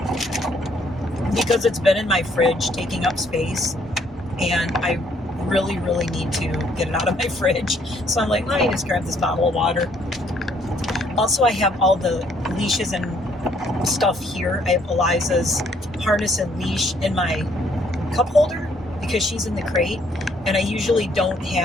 because it's been in my fridge taking up space, and I really, really need to get it out of my fridge. So I'm like, let me just grab this bottle of water. Also, I have all the leashes and stuff here. I have Eliza's harness and leash in my cup holder because she's in the crate, and I usually don't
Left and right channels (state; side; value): normal; both; correlation 0.66